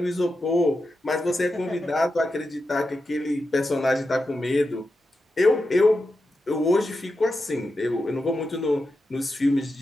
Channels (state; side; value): normal; both; correlation 0.89